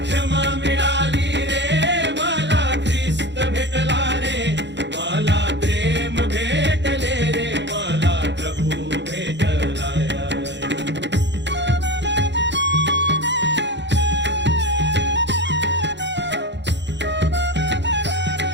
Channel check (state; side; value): late; left; 0.52 ms